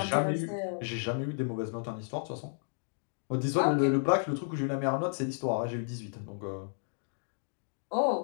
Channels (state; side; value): silent; right; digital silence